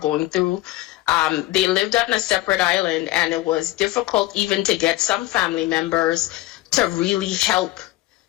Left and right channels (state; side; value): quieter; right; 17.5 dB